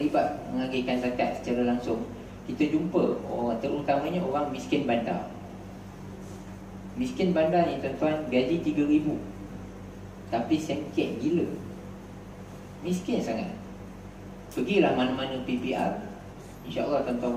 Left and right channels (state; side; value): identical; both; correlation 1.00